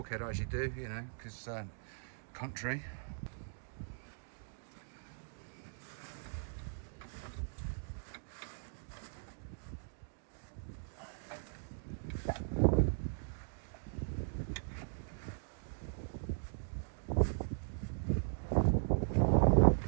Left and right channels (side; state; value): left; silent; digital silence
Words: as you do, you know, because country.